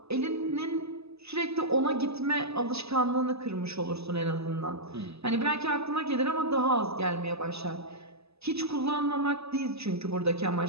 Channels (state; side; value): late; left; 0.79 ms